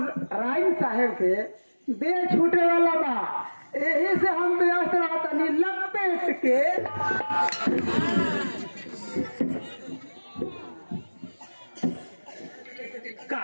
साहेब के देह छूटे वाला बा, यही से हम व्यस्त रहतनी लपेट के।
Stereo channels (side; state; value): both; inverted; correlation -1.00